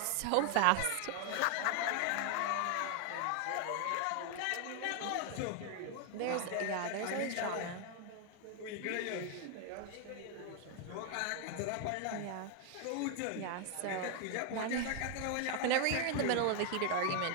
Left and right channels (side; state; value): both; different; correlation 0.00